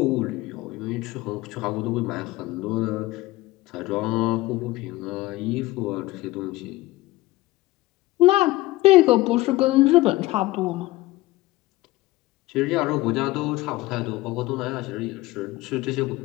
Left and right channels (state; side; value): quieter; right; 19.0 dB